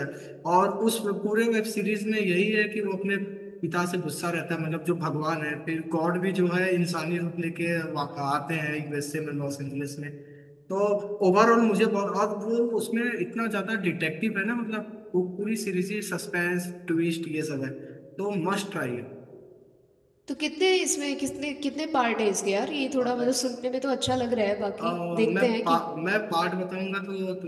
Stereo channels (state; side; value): identical; both; correlation 1.00